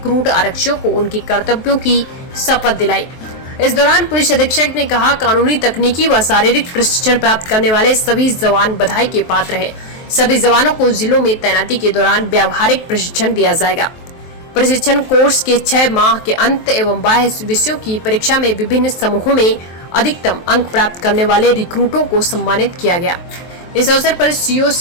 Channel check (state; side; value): late; right; 23 ms